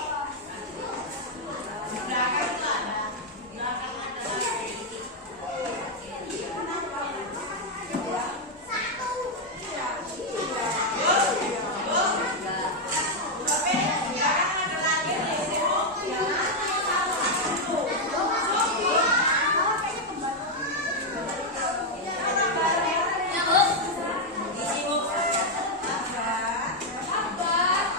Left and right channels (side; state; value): both; normal; correlation 0.01